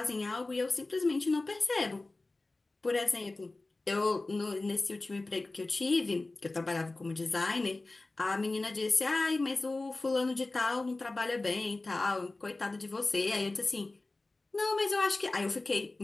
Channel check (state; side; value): quieter; right; 3.1 dB